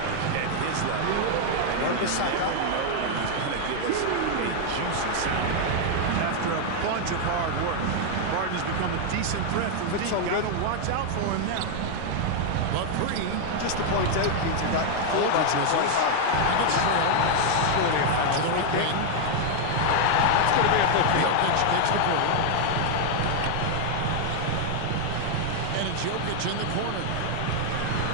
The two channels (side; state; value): both; different; correlation 0.00